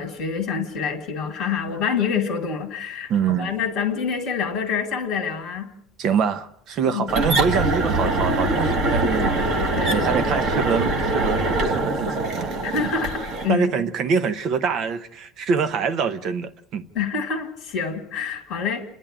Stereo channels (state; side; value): normal; both; correlation 0.35